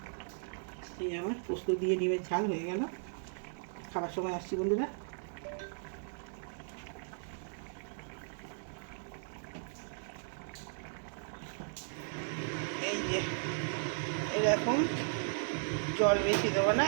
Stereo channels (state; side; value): silent; left; 53 dB below the other